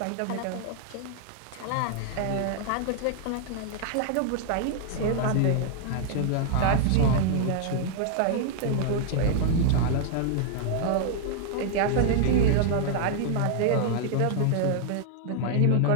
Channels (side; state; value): both; different; correlation 0.00